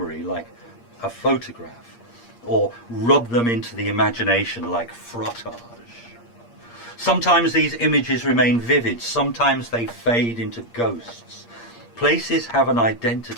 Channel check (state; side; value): late; right; 8.6 ms